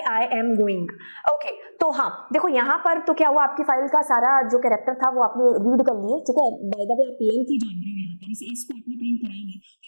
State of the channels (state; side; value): inverted; both; correlation -1.00